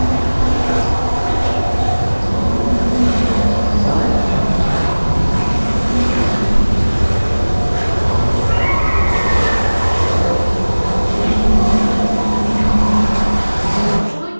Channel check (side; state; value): both; inverted; correlation -1.00